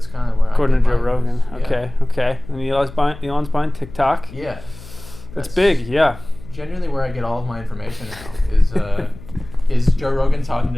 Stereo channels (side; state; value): left; noise; hum, 17 dB below the sound